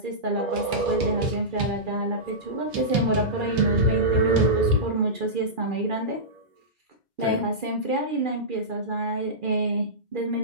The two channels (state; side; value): late; left; 2.4 ms